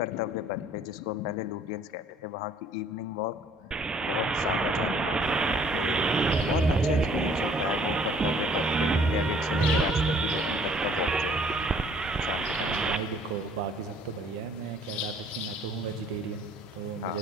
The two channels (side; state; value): both; normal; correlation 0.58